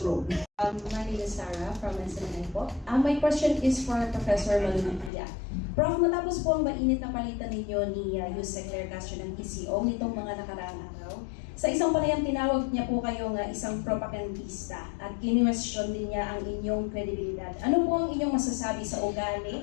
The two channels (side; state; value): right; drops out; at 5.1 s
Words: My name is Sarah from SNN po. My question is for Professor Malupitia. Prof, matapos po ang mainit na palitan ninyo ni Yusek Claire Castro ng PCO nitong mga nakaraang araw, sa isang panayam tinawag niya po kayong isang propagandista at kinwestiyon din niya ang inyong kredibilidad. Ano po ang inyong masasabi sa